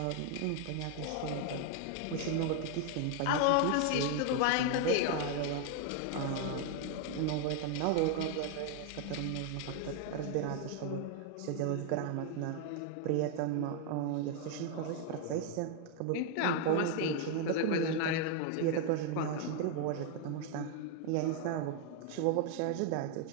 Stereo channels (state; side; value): different; both; correlation 0.00